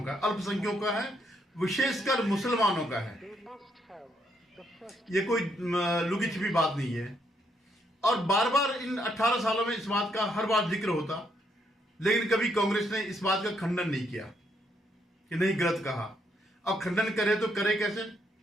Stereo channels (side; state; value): both; normal; correlation 0.74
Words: का, अल्पसंख्यकों का है, विशेषकर मुसलमानों का है। ये कोई लुकी छिपी बात नहीं है। और बार बार इन 18 सालों में इस बात का हर बार जिक्र होता, लेकिन कभी कांग्रेस ने इस बात का खंडन नहीं किया कि नहीं, गलत कहा। अब खंडन करे तो करे कैसे?